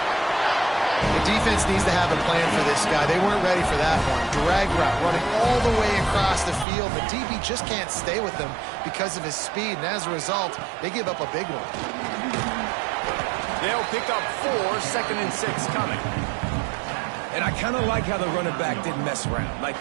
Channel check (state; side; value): drops out; left; at 6.7 s